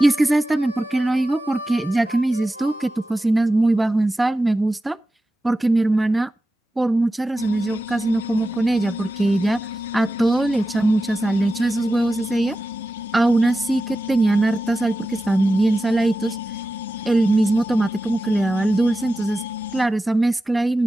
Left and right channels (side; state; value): both; normal; correlation 0.93